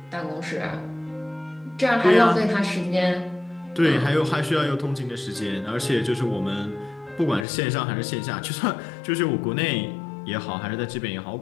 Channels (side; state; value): right; drops out; at 7.5 s